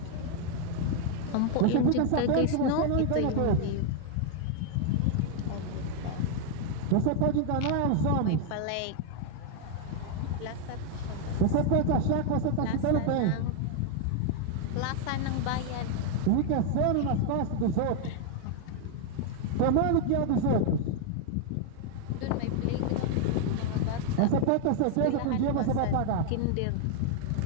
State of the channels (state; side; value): different; both; correlation 0.00